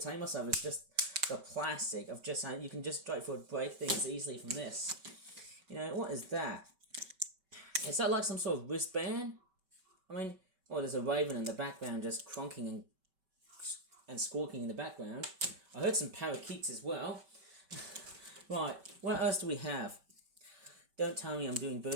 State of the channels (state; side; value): late; left; 5.2 ms